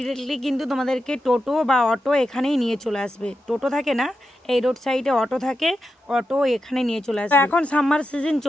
কিন্তু তোমাদেরকে টোটো বা অটো এখানেই নিয়ে চলে আসবে। টোটো থাকে না, এই রোড সাইডে অটো থাকে, অটো এখানে নিয়ে চলে আসবে। এখন সামার সিজন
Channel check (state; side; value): normal; both; correlation 0.88